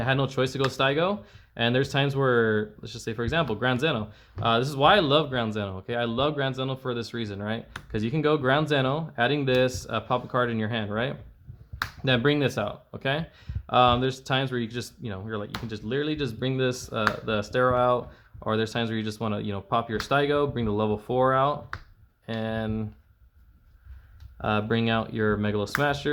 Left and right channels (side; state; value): both; identical; correlation 1.00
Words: I had no choice to go Staigo. And there's times where, let's just say, for example, Ground Zeno. This is why I love Ground Zeno, okay? I love Ground Zeno for this reason, right? Because you can go Ground Zeno, adding this, pop a card in your hand, right? Then bring this out, okay? There's times where you just, you know, you're like, you can just literally just bring this, the Stero out, or there's times where you just want to, you know, pop your Staigo, bring the level 4 out, and bring out your Megalo